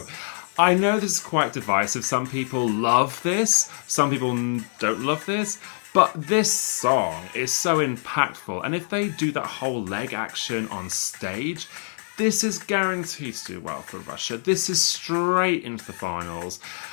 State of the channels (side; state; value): right; silent; digital silence